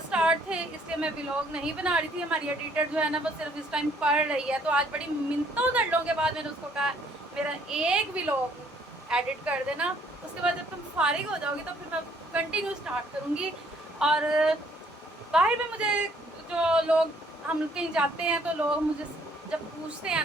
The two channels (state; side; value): normal; both; correlation 0.64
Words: स्टार्ट थे, इसलिए मैं व्लॉग नहीं बना रही थी। हमारी एडिटर जो है ना वो सिर्फ इस टाइम पढ़ रही है, तो आज बड़ी मिन्नतों दंडों के बाद मैंने उसको कहा मेरा एक व्लॉग एडिट कर देना, उसके बाद जब तुम फारिग हो जाओगी तो फिर मैं कंटिन्यू स्टार्ट करूँगी। और बाहर में मुझे जो लोग, हम कहीं जाते हैं तो लोग मुझे जब पूछते हैं